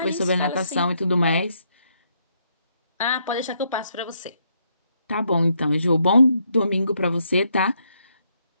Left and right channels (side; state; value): both; inverted; correlation -0.75